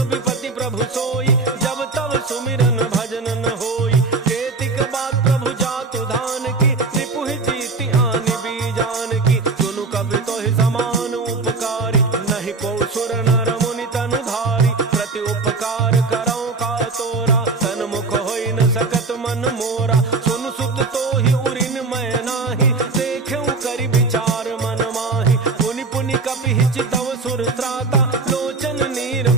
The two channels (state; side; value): quieter; left; 3.9 dB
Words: विपति प्रभु सोई, जब तब सुमिरन भजन न होई, केतिक बात प्रभु जातु धान की, रिपुहि जीति आनि बीजान की, सुनु कवि तोहि समान उपकारी, नहीं को सुर नर मुनि तनु धारी, प्रति उपकार करौ का तोरा, सन्मुख होई न सकत मन मोरा, सुन सुत तोहि उरिन मैं नाही, देखेउ करि विचार मन माहि, पुनि पुनि कपि हिचितव सुर त्राता, लोचन नीर